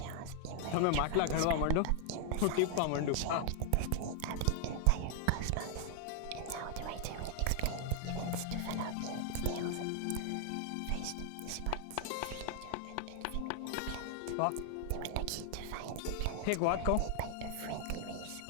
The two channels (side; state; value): both; different; correlation 0.00